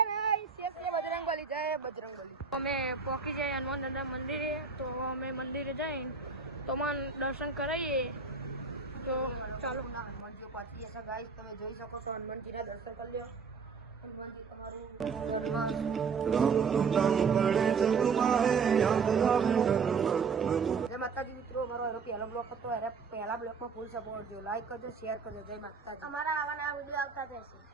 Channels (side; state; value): left; quieter; 5.3 dB